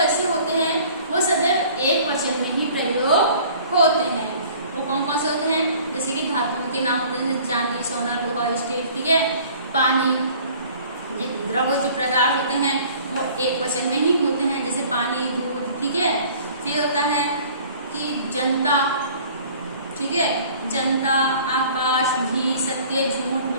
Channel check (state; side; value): inverted; both; correlation -0.50